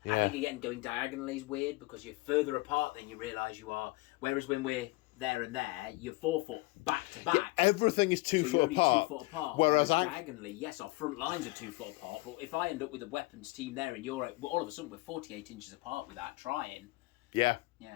I think, again, going diagonally is weird because you're further apart than you realise you are. Whereas when we're there and there, you're 4 foot back to back. Everything is 2 foot apart. 2 foot apart. Whereas diagonally, yes, our front lines are 2 foot apart. But if I end up with a weapons team there and you're all of a sudden we're 48 inches apart without trying. Yeah.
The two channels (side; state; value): right; quieter; 22.4 dB